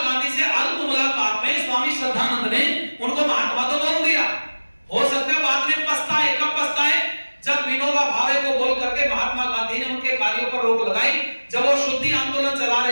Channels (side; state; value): both; inverted; correlation -1.00